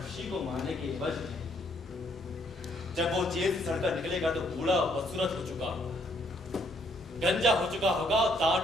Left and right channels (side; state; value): both; normal; correlation 0.68